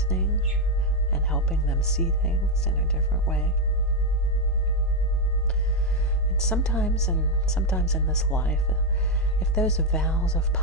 and helping them see things in a different way. And sometimes in this life, if those vows of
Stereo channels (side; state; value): both; normal; correlation 0.04